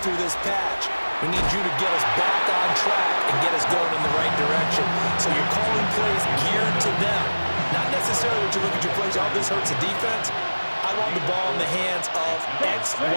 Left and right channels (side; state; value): both; inverted; correlation -1.00